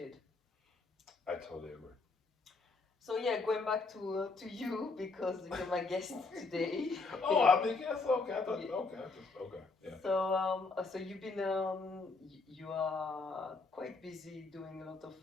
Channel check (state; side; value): quieter; right; 3.8 dB